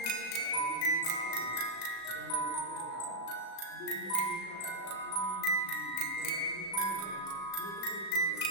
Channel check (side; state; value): right; late; 36 ms